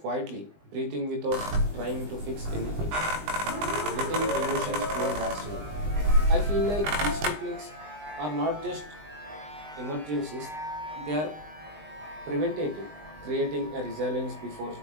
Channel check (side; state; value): left; late; 20 ms